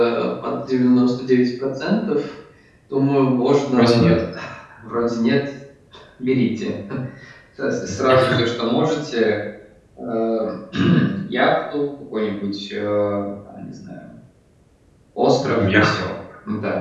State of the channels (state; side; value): identical; both; correlation 1.00